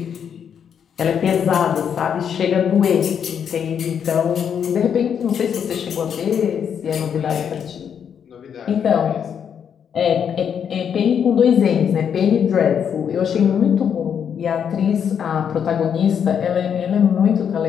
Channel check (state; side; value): quieter; right; 7.9 dB